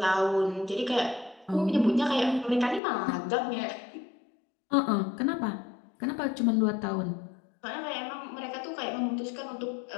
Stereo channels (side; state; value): right; drops out; at 2.8 s